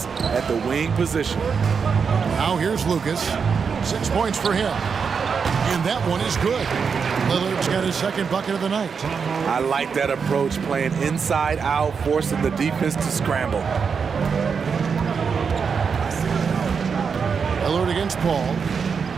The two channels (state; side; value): quieter; left; 6.0 dB